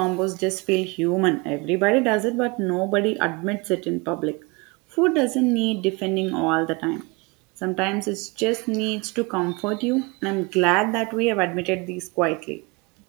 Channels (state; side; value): quieter; left; 27.2 dB